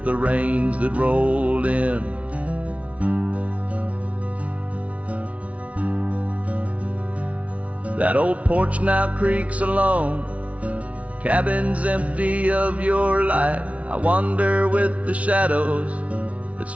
the rains that rolled in. That old porch now creaks alone, cabin's empty of your light. I wander with the shadows that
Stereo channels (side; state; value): left; late; 0.065 ms